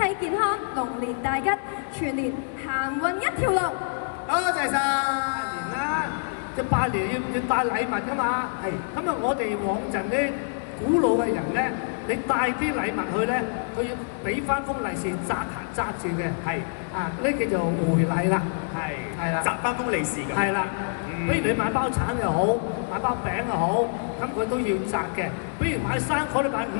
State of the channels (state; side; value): silent; right; digital silence